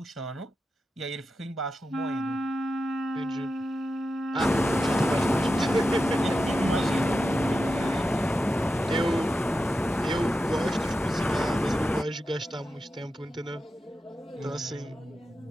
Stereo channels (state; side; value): normal; both; correlation 0.90